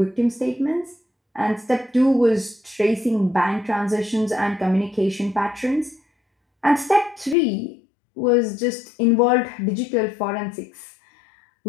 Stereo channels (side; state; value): right; drops out; at 7.4 s